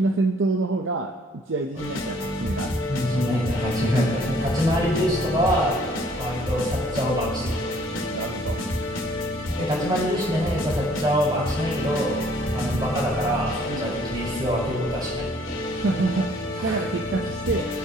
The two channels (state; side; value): normal; both; correlation 0.60